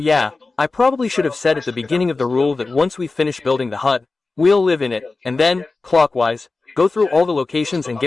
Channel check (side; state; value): right; quieter; 3.7 dB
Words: I probably should have said at the beginning of the rule that once we finish building the hut, we'll live in it, and then, clockwise, go through all the locations and